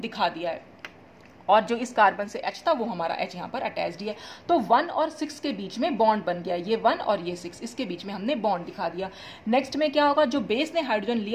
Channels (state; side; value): identical; both; correlation 1.00